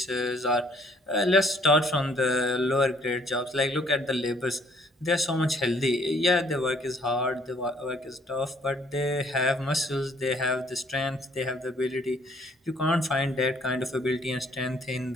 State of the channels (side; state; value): both; normal; correlation 0.62